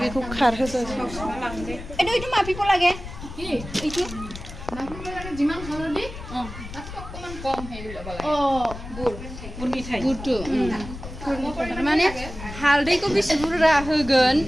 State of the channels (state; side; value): noise; left; rumble, 12 dB below the sound